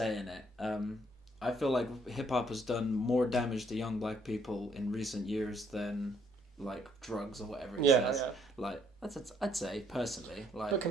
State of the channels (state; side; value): normal; both; correlation 0.67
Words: in it? I feel like hip hop has done more damage to young black people in recent years than like drugs or whatever it says. Yeah. Like I'd say personally, like But